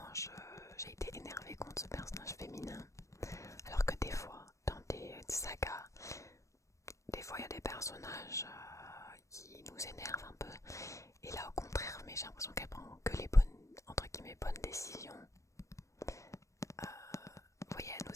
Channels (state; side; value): late; right; 0.15 ms